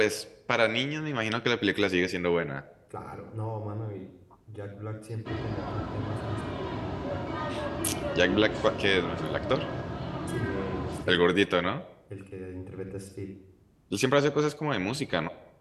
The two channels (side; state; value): both; identical; correlation 1.00